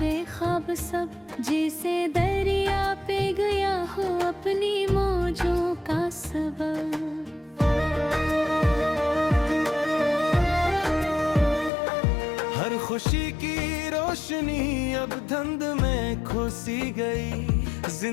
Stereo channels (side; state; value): right; drops out; at 11.7 s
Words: ख्वाब सब, जैसे दरिया पे गया हो अपनी मौजों का सबब। हर खुशी की रोशनी अब धुंध में खोसी गई,